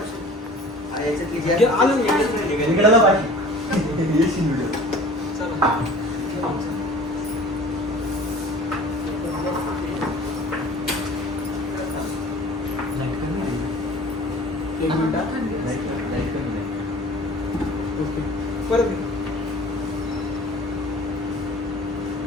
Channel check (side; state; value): both; normal; correlation 0.45